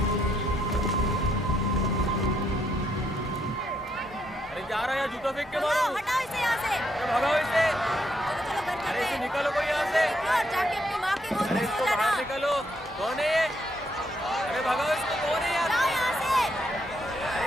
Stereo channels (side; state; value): both; normal; correlation 0.75